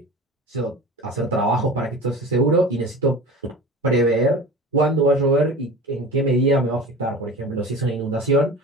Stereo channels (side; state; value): both; normal; correlation 0.35